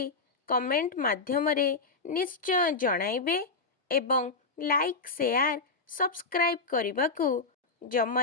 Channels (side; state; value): right; quieter; 4.0 dB